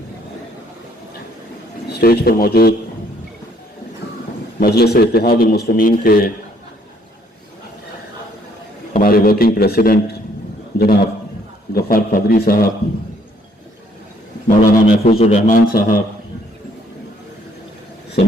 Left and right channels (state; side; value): normal; both; correlation 0.65